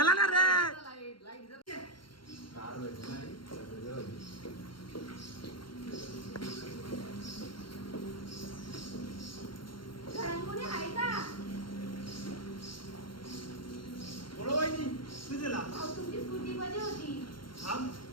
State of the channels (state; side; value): late; right; 0.72 ms